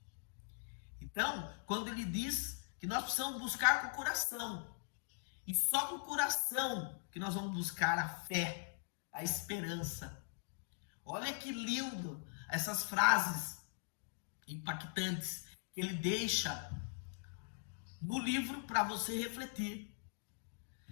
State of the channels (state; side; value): silent; right; digital silence